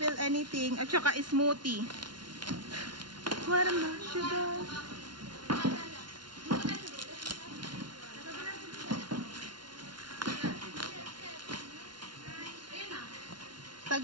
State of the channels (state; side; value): late; left; 0.71 ms